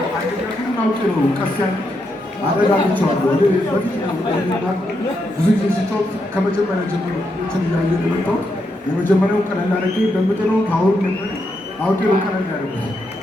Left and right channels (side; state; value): both; normal; correlation 0.81